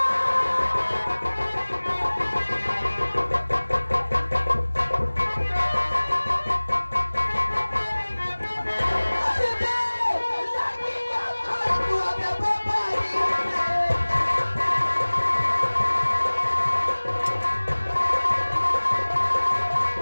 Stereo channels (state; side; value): inverted; both; correlation -1.00